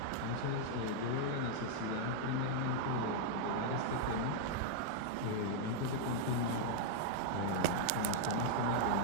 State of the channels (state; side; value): different; both; correlation -0.02